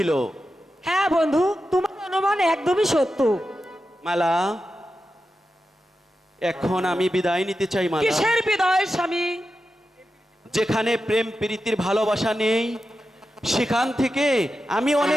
হ্যাঁ বন্ধু, তোমার অনুমান একদমই সত্য। মালা, এখন আমি বিদায় নিতে চাই মালা। কিসের বিদায় স্বামী? যেখানে প্রেম প্রীতির ভালোবাসা নেই সেখান থেকে আমি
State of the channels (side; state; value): both; normal; correlation 0.90